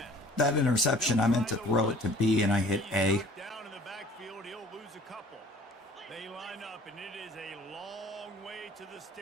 That interception, I meant to throw it to B and I hit A. Down in the backfield, he'll lose a couple. They line up, and it is a long way to the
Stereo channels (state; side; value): normal; both; correlation 0.51